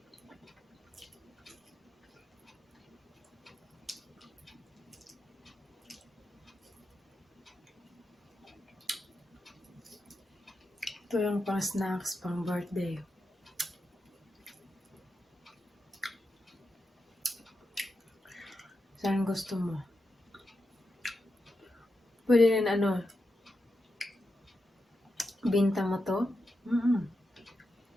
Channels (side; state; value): both; normal; correlation 0.88